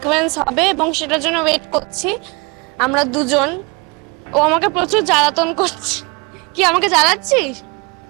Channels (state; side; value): quieter; left; 28.6 dB